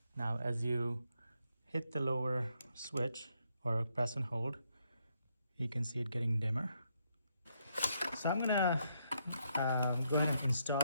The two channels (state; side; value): inverted; both; correlation -0.77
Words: Now as you hit the lower switch or press and hold, you can see it getting dimmer. So I'm gonna go ahead and install